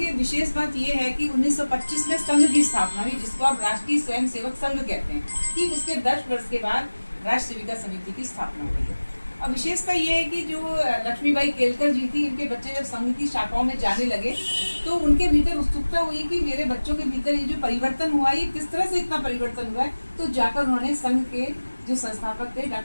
विशेष बात ये है कि 1925 में संघ की स्थापना हुई, जिसको आप राष्ट्रीय स्वयंसेवक संघ कहते हैं। ठीक उसके 10 वर्ष के बाद राष्ट्र सेविका समिति की स्थापना हुई है। और विशेषता ये है कि जो लक्ष्मीबाई केलकर जी थी, इनके बच्चे जब संघ की शाखाओं में जाने लगे तो उनके भीतर उत्सुकता हुई कि मेरे बच्चों के भीतर ये जो परिवर्तन हुआ, ये किस तरह से इतना परिवर्तन हुआ है। तो जाकर उन्होंने संघ के जो संस्थापक थे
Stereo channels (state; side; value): inverted; both; correlation -1.00